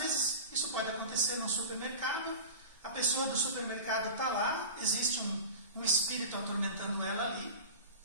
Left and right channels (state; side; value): inverted; both; correlation -0.32